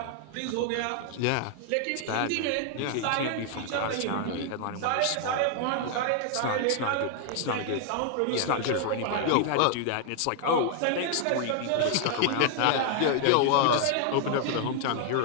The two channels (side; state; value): both; different; correlation 0.00